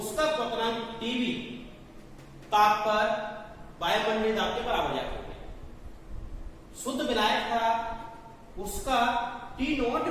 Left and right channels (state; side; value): identical; both; correlation 1.00